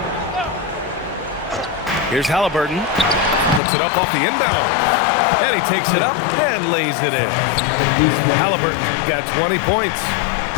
Here's Halliburton. Puts it up off the inbound. And he takes it up and lays it in. Halliburton got 20 points.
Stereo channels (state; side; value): drops out; right; at 3.6 s